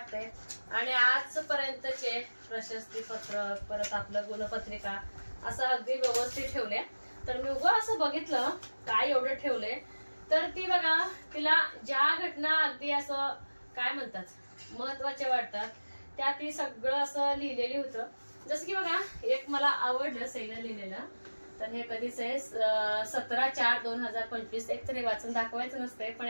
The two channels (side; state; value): both; inverted; correlation -1.00